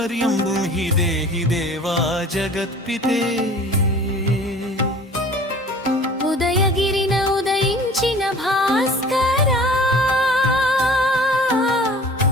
బ్రూహి దేహి దేవా జగత్పితే ఉదయగిరిన ఉదయించిన భాస్కరా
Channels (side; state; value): both; normal; correlation 0.46